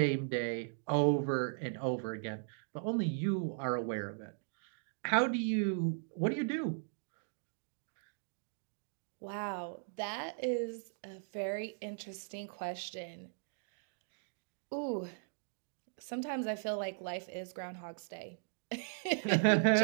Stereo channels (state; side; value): silent; left; digital silence